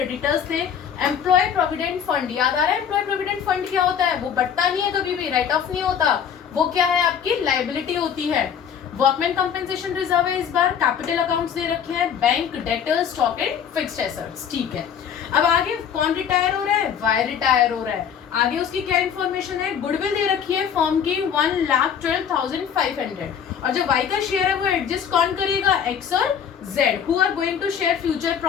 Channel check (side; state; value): right; quieter; 8.1 dB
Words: थे, एम्प्लॉय प्रोविडेंट फंड, याद आ रहा है एम्प्लॉय प्रोविडेंट फंड क्या होता है, वो बढ़ता नहीं है कभी भी, राइट ऑफ नहीं होता, वो क्या है आपकी लायबिलिटी होती है। वर्कमैन कंपेंसेशन रिजर्व है, इस बार कैपिटल अकाउंट्स दे रखे हैं, bank, debtors, stock and fixed assets. ठीक है, अब आगे कौन रिटायर हो रहा है, वाई रिटायर हो रहा है। आगे उसकी क्या इन्फॉर्मेशन है, गुडविल दे रखी है फॉर्म की 1,12,500, और जो वाई का शेयर है वो एडजस्ट कौन करेगा, एक्स और Z, who are going to share future